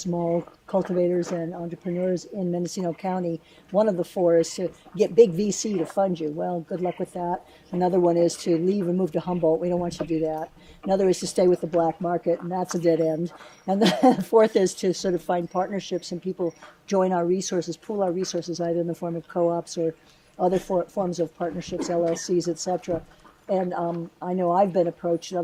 cultivators and entrepreneurs in Mendocino County, one of the 4 is to get big VC to fund you. Well, good luck with that. Another one is to leave and move to Humboldt. We don't want you to do that. Another is to stay with the black market, and that's a dead end. And the 4th is to sort of find partnerships and people join our resources, pool our resources, either in the form of co-ops or other forms of partnerships, LLCs, et cetera. And I know I've been approached, and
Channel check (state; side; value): identical; both; correlation 1.00